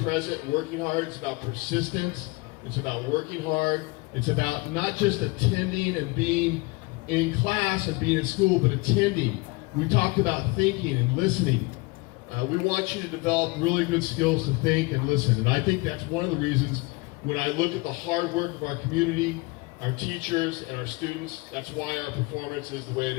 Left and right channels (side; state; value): right; quieter; 24.4 dB